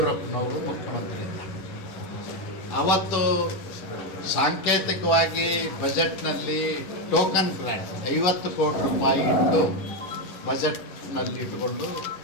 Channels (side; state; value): right; late; 11 ms